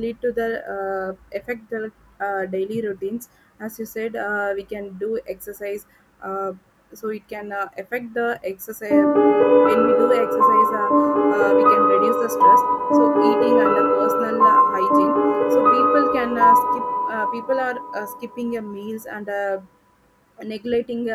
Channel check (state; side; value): identical; both; correlation 1.00